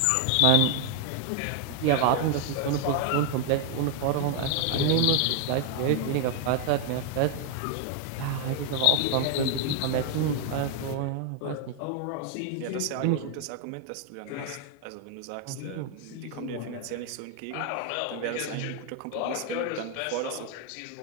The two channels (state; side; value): different; both; correlation 0.00